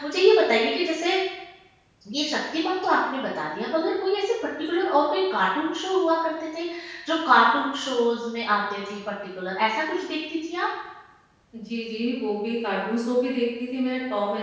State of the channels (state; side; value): identical; both; correlation 1.00